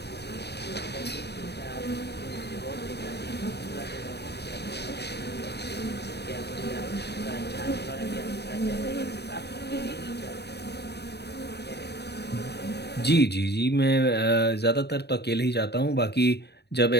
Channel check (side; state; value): right; late; 0.48 ms